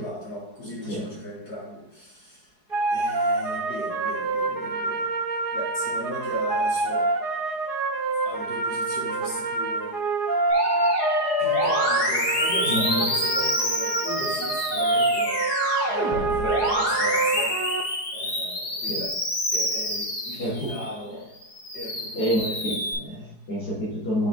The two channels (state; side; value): late; right; 4.8 ms